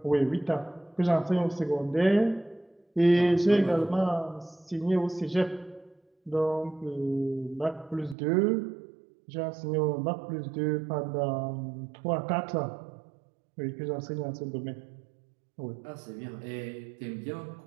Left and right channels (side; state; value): left; drops out; at 8.2 s